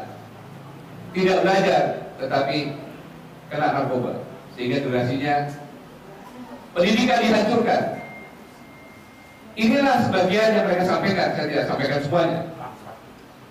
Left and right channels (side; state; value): both; identical; correlation 1.00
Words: tidak belajar tetapi kena narkoba, sehingga durasinya pendidikan dihancurkan. Inilah sebagian yang mereka sampaikan, saya tidak sampaikan semuanya.